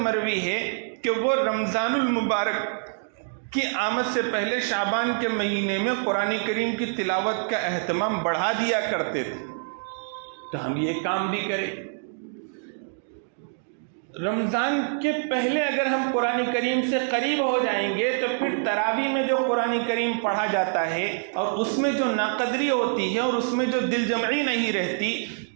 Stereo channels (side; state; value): left; silent; digital silence